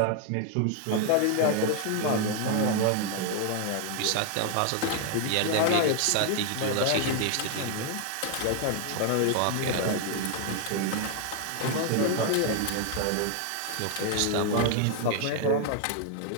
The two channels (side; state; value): both; different; correlation 0.00